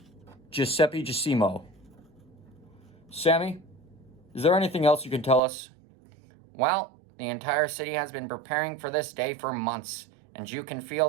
Giuseppe Giacomo. Sammy, is there anything else you can tell us? Well, the entire city has been preparing for this day for months, and you can feel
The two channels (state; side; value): drops out; left; at 5.4 s